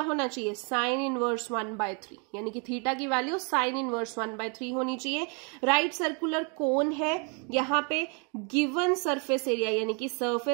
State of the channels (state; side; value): quieter; left; 36.0 dB